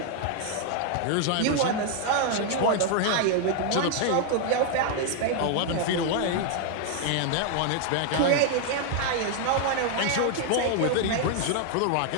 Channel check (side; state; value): both; different; correlation 0.00